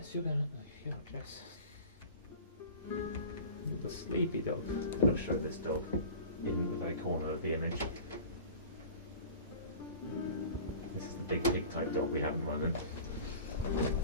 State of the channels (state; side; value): inverted; both; correlation -0.40